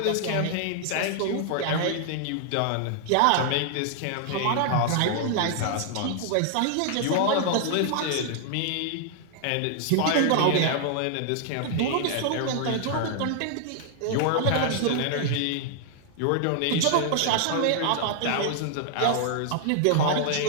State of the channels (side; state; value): both; different; correlation 0.00